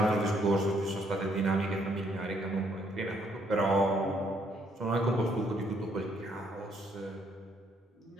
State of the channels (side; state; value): both; normal; correlation 0.70